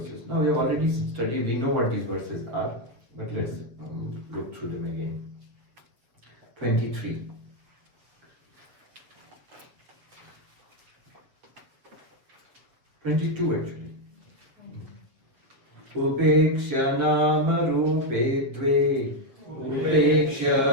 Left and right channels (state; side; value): late; left; 7.7 ms